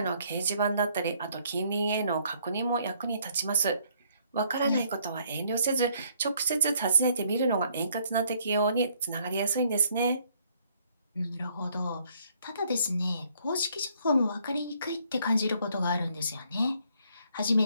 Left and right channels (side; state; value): both; inverted; correlation -0.66